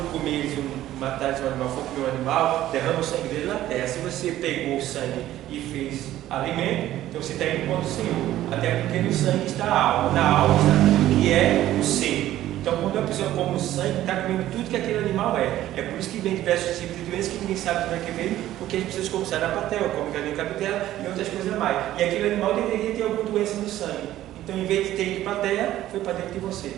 comer matar um animal, for comer um animal, derrama o sangue dele na terra. Se você pegou o sangue e fez alimento, então você está indo contra o Senhor. Até porque no sangue está a alma, na alma está tudo que é o ser. Então, quando a pessoa come o sangue, está comendo tudo que aquele animal é. É por isso que vem diversos tipos de doenças que ninguém sabe como é que vem, porque as pessoas comem sarapatel, comem galinha cabidela e outras coisas mais. E aquele animal deveria ter alguma doença no sangue. Então, em vez de ter ido para a terra, foi para dentro de você.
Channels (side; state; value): left; quieter; 13.8 dB